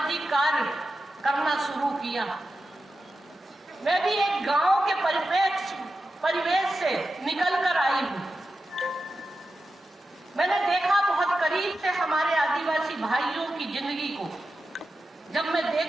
कार्य करना शुरू किया। मैं भी एक गांव के परिवेश से निकल कर आई हूँ। मैंने देखा बहुत करीब से हमारे आदिवासी भाइयों की जिंदगी को। जब मैं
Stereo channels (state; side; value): normal; both; correlation 0.91